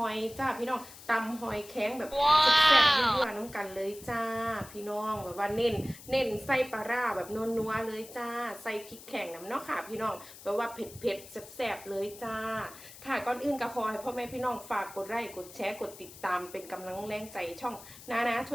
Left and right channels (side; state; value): left; noise; hiss, 17 dB below the sound